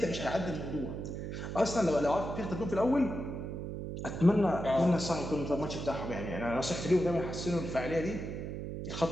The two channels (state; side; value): noise; right; hum, 6 dB below the sound